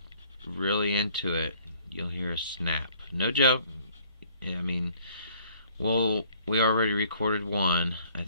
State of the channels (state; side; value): inverted; both; correlation -0.59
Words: really into it, you'll hear a snap. No joke. I mean, well, we already recorded one. I